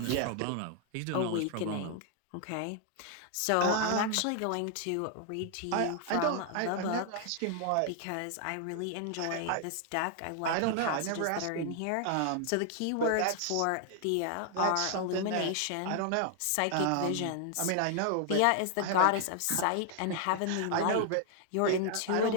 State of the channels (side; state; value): both; different; correlation 0.00